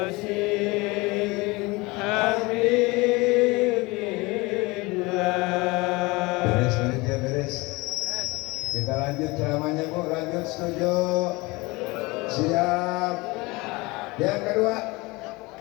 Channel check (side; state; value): right; quieter; 23.7 dB